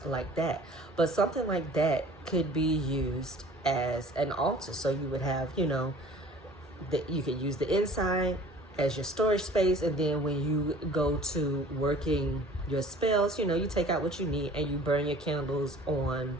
like that. But something like that could be used as an altar. So you would have, you know, that you could use the inside as your storage space, and then when you go to working your spells, you know, you take out what you need and you burn your candles on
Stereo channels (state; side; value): normal; both; correlation 0.48